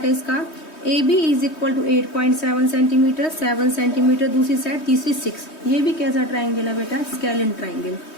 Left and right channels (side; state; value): right; late; 3.2 ms